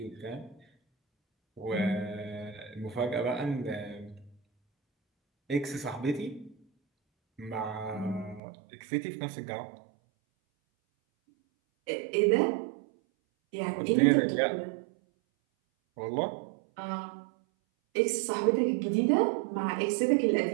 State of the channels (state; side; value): drops out; left; at 8.4 s